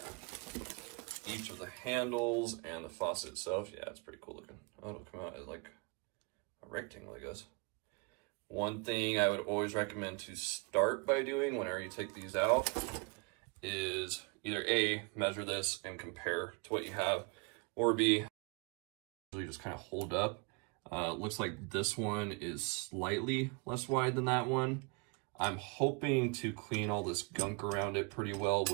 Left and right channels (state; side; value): quieter; left; 31.8 dB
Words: each of the handles and the faucet itself. Yeah, it's pretty cool looking. Oh, it'll come out as like a rectangle, I guess. One thing I would always recommend to start by doing whenever you take these out is either A, measure this and compare to what you have, or B, usually just kind of hold up. Looks like this one is slightly less wide than that one. I'm hoping to clean all this gunk around it pretty well